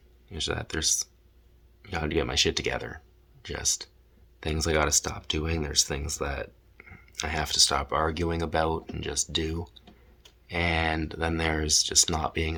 Is that there's, I gotta get my shit together. Just things I gotta stop doing. There's things that I have to stop arguing about and just do. And then there's just not being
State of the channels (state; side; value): identical; both; correlation 1.00